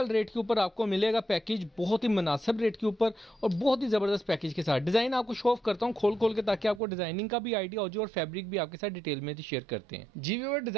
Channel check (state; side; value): drops out; left; at 6.8 s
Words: रेट के ऊपर आपको मिलेगा पैकेज, बहुत ही मुनासिब रेट के ऊपर और बहुत ही ज़बरदस्त पैकेज के साथ। डिज़ाइन आपको शो ऑफ करता हूँ खोल के ताकि आपको डिज़ाइनिंग का भी आइडिया हो जाए और फैब्रिक भी आपके साथ डिटेल में शेयर करते हैं। जी व्यूअर,